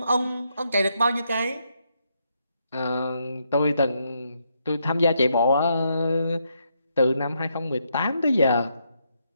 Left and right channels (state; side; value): inverted; both; correlation -0.78